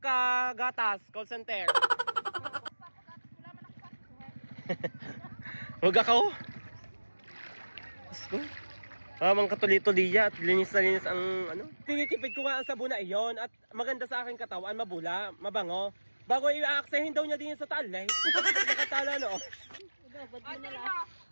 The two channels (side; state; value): both; inverted; correlation -1.00